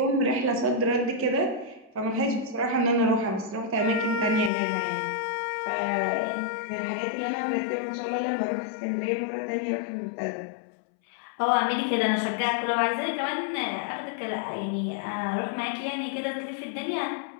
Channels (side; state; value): right; drops out; at 4.5 s